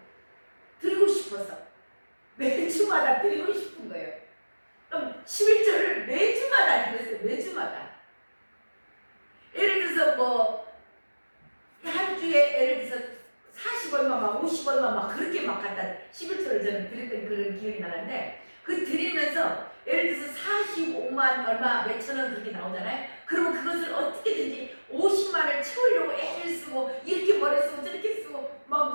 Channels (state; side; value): inverted; both; correlation -1.00